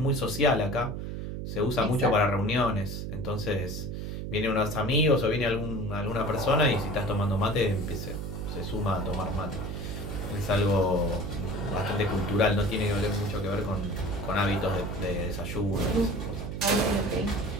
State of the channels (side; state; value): right; noise; hum, 5 dB below the sound